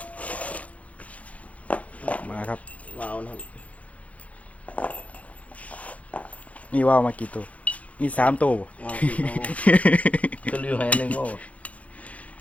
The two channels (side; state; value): right; late; 0.067 ms